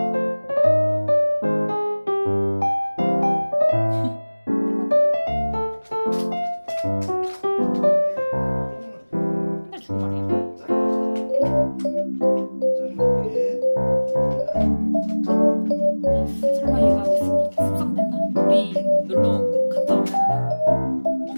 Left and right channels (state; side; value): inverted; both; correlation -1.00